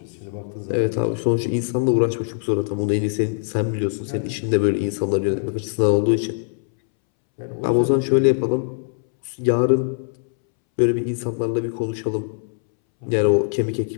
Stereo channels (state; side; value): silent; right; 64 dB below the other